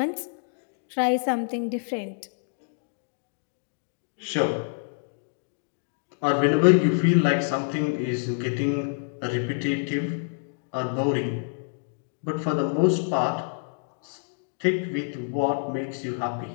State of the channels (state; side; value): silent; right; digital silence